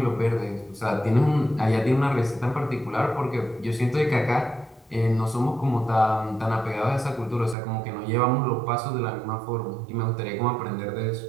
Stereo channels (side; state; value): left; drops out; at 7.6 s